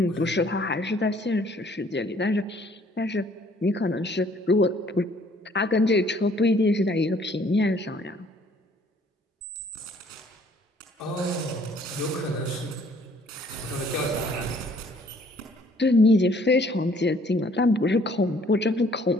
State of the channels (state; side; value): normal; both; correlation 0.60